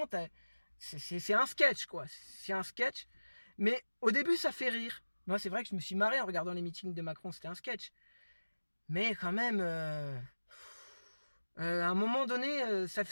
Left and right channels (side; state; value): both; inverted; correlation -1.00